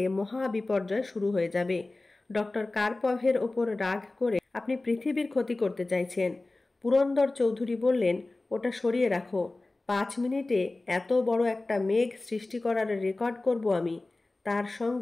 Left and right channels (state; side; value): quieter; right; 3.0 dB